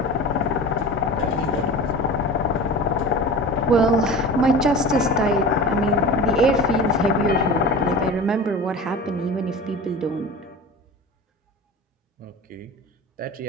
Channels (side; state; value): both; normal; correlation 0.34